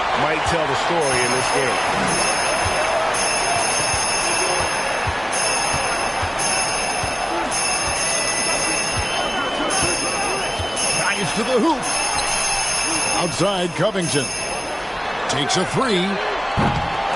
might tell the story in this game. Drives to the hoop. Outside, Covington. Takes a 3.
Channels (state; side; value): identical; both; correlation 1.00